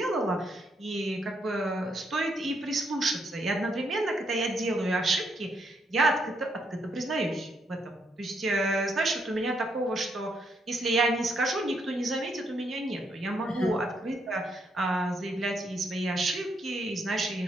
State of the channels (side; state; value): both; normal; correlation 0.76